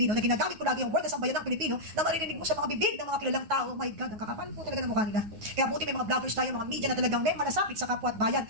na ginagamit ko lagi ang word na sambayan ng Pilipino, na maririnig mo sa mga bibig ng mga kilalang tao, oh my God, ang kakapal po talaga ng mukha nila. Kaya buti may mga vloggers tayo, mga media na talagang may malasakit sa kapwa at bayan.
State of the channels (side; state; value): left; late; 9.4 ms